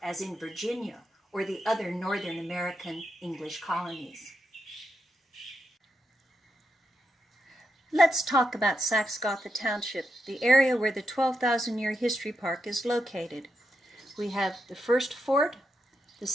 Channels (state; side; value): normal; both; correlation 0.84